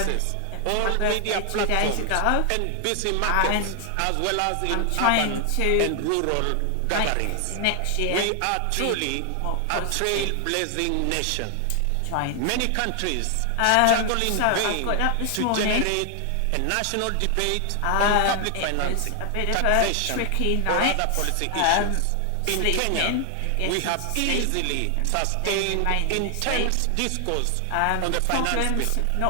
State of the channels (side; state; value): both; different; correlation 0.00